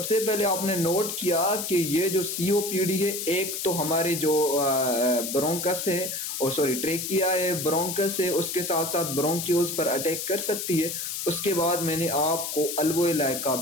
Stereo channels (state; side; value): noise; left; hiss, 4 dB below the sound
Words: पहले आपने नोट किया कि ये जो सीओपीडी है, एक तो हमारे जो ब्रोंकस है और सॉरी ट्रेकिया है, ब्रोंकस है, उसके साथ साथ ब्रोंक्यूल्स पर अटैक कर सकती है। उसके बाद मैंने आपको अल्वोलाई का